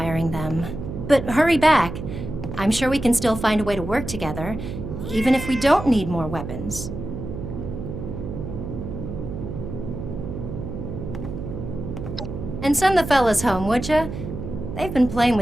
them. But hurry back. I'm sure we can still find a way to work together, even if we don't need more weapons. And send the fellas home, would ya? They've been playing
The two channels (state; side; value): noise; right; hum, 7 dB below the sound